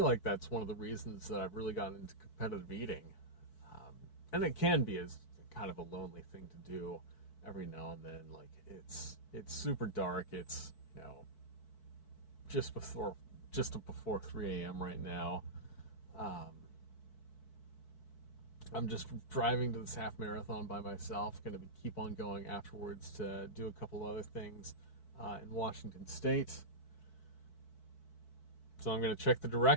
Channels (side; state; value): right; late; 4.6 ms